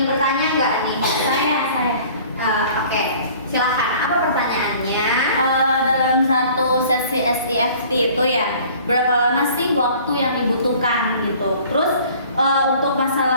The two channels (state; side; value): inverted; both; correlation -0.50